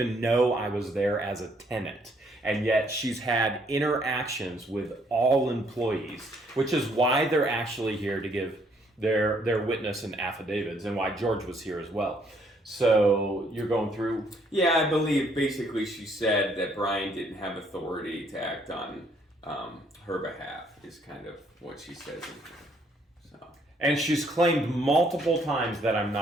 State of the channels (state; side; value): normal; both; correlation 0.67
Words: know I was there as a tenant. And yet she's had interactions with all employees, which is why they're actually here to give their witness and affidavits, and why George was here as well. So you're going through? Yeah, I believe basically she said that Brian didn't have authority to act on her behalf, is kind of what she says in here. So. And she's claimed multiple times that I'm